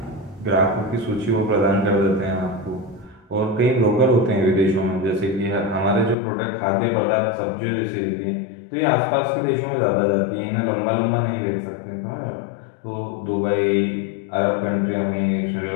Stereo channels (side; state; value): right; drops out; at 6.2 s